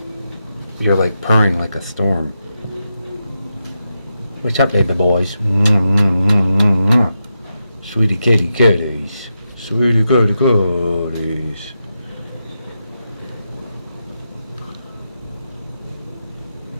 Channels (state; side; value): inverted; both; correlation -0.87